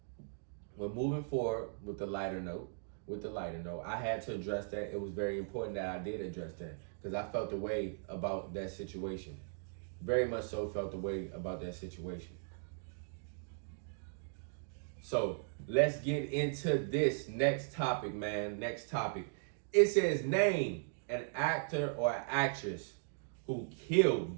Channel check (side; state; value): left; silent; digital silence